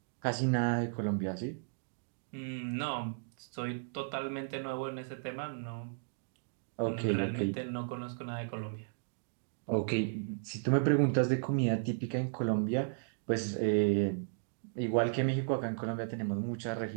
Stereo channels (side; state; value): left; silent; digital silence